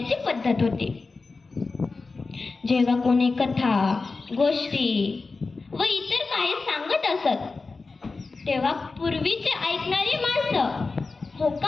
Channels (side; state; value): right; quieter; 4.0 dB